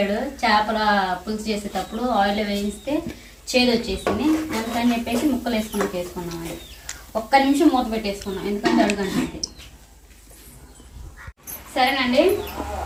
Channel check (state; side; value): identical; both; correlation 1.00